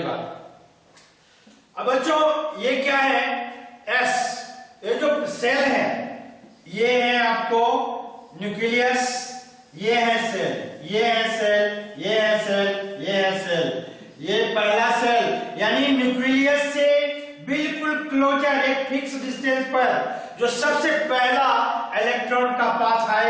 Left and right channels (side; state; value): both; identical; correlation 1.00